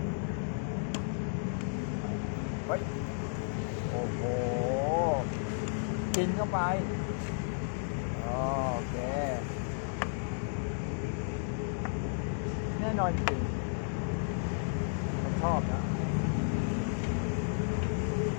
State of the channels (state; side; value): silent; right; digital silence